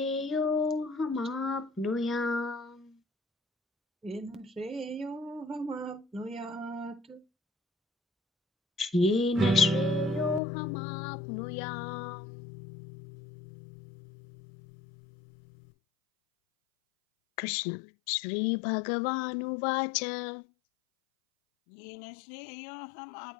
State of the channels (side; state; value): right; drops out; at 10.4 s